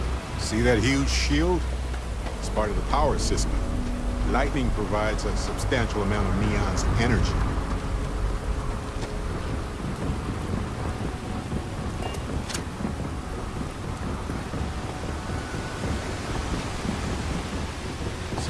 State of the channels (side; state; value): both; identical; correlation 1.00